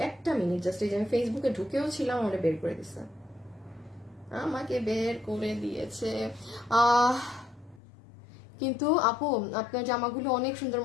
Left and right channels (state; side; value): drops out; right; at 7.8 s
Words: একটা মিনিট জাস্ট। এই যে আমি ফেসবুকে ঢুকেও ছিলাম, আমাকে বের করে দিচ্ছে, আমাকে বের করে দিয়েছে। কিন্তু আপু আপনার জামাগুলো অনেক সুন্দর,